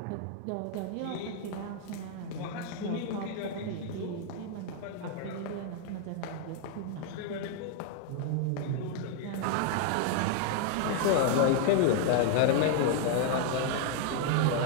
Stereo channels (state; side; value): different; both; correlation 0.00